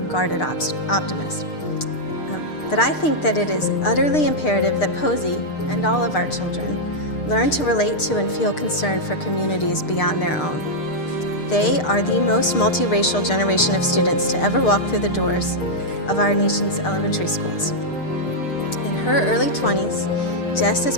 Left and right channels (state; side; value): late; right; 6.6 ms